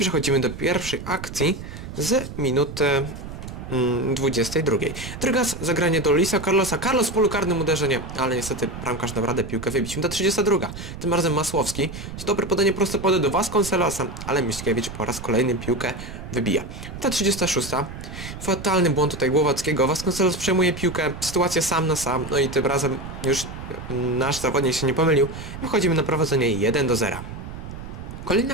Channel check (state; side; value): noise; right; rumble, 10 dB below the sound